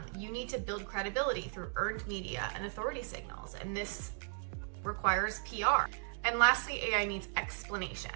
You need to build credibility through earned media and authority signals, and this requires PR. And lastly, AI needs explanation.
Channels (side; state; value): left; silent; 54 dB below the other